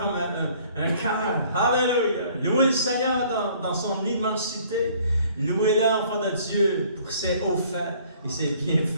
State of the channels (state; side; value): inverted; both; correlation -0.57